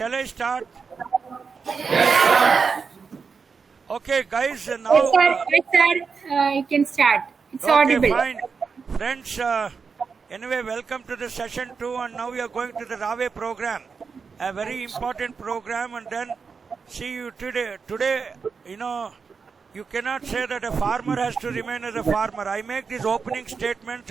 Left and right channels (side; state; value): left; quieter; 5.4 dB